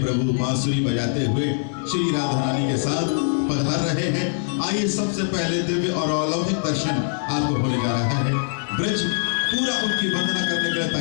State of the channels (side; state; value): right; silent; digital silence